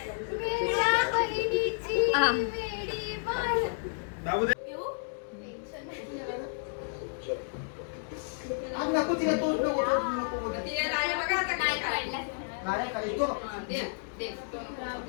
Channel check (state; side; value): silent; right; digital silence